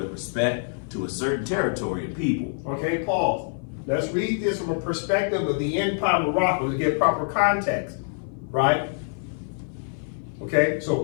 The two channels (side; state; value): right; silent; 56 dB below the other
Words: respect to a certain territory and people. Okay, pause. Let's read this from a perspective of the Empire of Morocco to get proper context, right? Okay, so